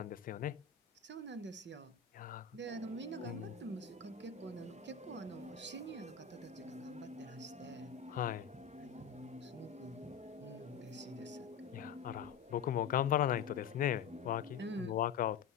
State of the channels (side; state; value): right; quieter; 7.2 dB